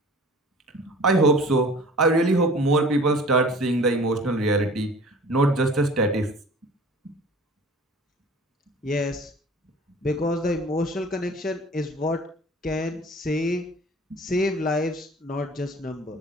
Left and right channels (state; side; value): normal; both; correlation 0.45